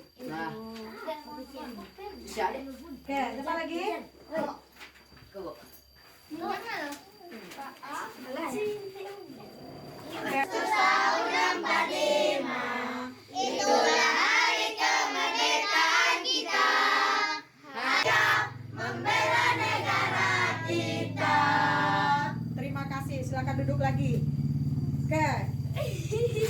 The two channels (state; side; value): identical; both; correlation 1.00